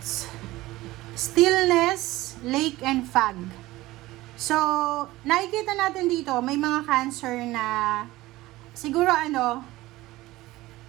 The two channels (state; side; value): quieter; left; 18.1 dB